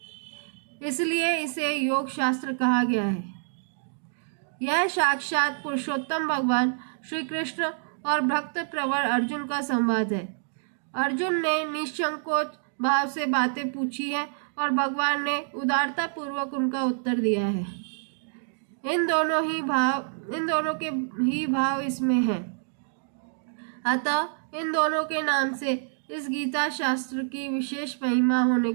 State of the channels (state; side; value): silent; left; digital silence